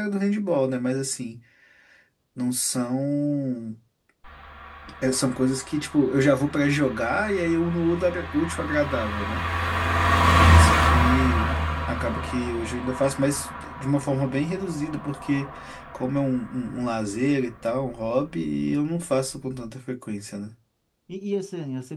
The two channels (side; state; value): both; identical; correlation 1.00